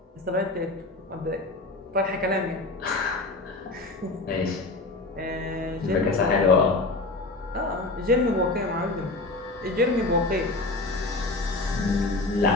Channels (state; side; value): quieter; right; 3.1 dB